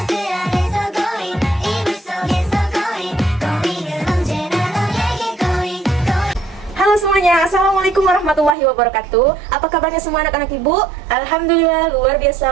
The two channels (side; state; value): left; drops out; at 8.6 s